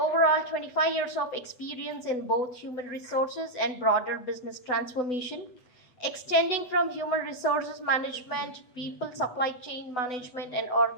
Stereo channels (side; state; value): right; late; 8.0 ms